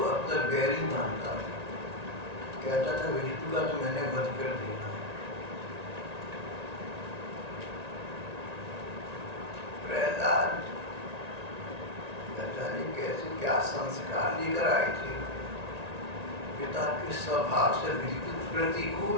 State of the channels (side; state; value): left; late; 1.9 ms